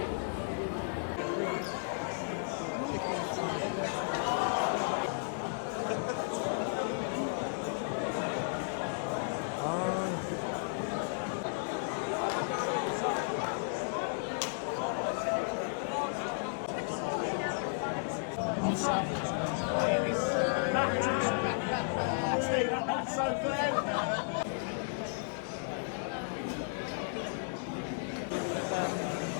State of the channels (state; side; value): silent; right; digital silence